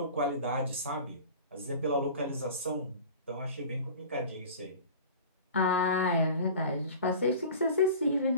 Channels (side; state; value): both; inverted; correlation -0.40